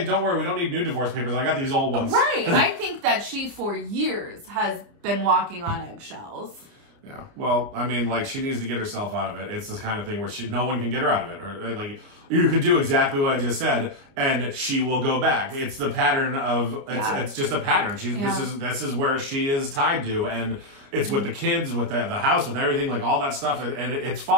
don't worry, we don't need new divorce papers. I got these old ones. Right. I think that she for years has been walking on eggshells. Yeah. Well, I mean, like, she needs to get herself out of it. It's this kind of thing where no one can get her out of it, or like. You could do exactly what I just said, and she will go back. It's the pattern of it's just a pattern. This is where she is tied to, and it's with the kids, with the house, with everything, like all that stuff, and it's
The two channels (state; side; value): late; left; 30 ms